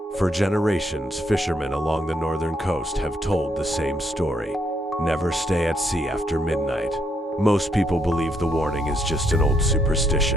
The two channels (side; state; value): both; normal; correlation 0.74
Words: For generations, fishermen along the northern coast have told the same story. Never stay at sea after midnight. Most people believe the warning is just an old